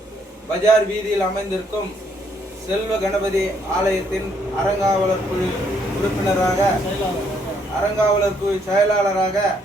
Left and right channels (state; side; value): normal; both; correlation 0.70